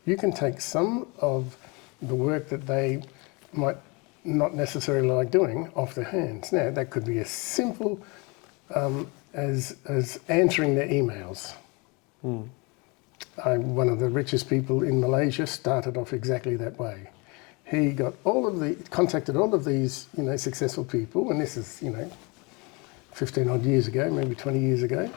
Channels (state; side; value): quieter; right; 28.7 dB